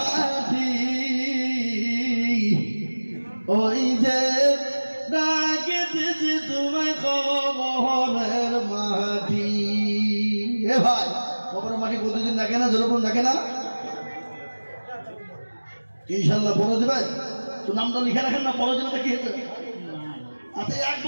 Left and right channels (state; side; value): inverted; both; correlation -1.00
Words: ওই যে ডাকে দিছি তোমায় কবরের মাটি। এ ভাই কবরের মাটি প্রতিদিন ডাকে না? যেরকম ডাকে না? ইনশাল্লাহ পরে দেবে তো। নামটা লিখে রাখেন না, পরে দেবে কি হয়েছে? আচ্ছা 1